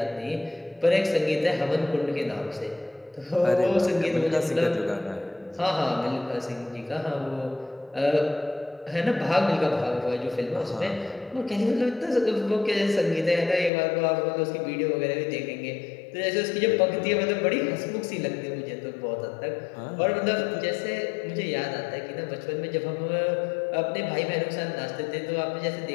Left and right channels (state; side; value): drops out; right; at 13.7 s